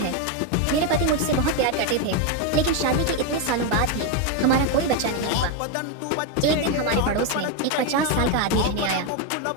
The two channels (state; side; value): different; both; correlation 0.02